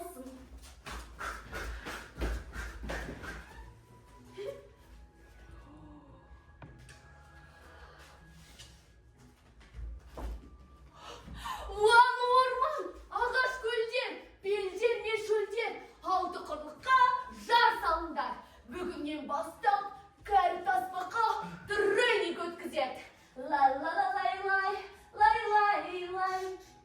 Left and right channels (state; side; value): identical; both; correlation 1.00